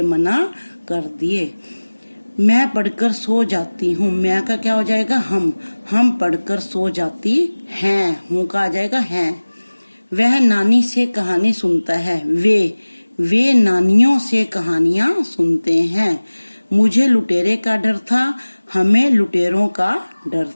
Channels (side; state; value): both; inverted; correlation -1.00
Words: मना कर दिए। मैं पढ़कर सो जाती हूँ। मैं का क्या हो जाएगा? हम पढ़कर सो जाती हैं। हूँ का आ जाएगा हैं। वह नानी से कहानी सुनता है। वे नानियों से कहानियां सुनते हैं। मुझे लुटेरे का डर था। हमें लुटेरों का डर